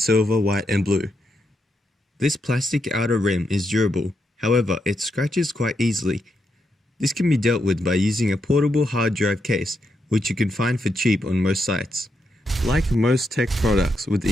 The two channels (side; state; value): both; normal; correlation 0.82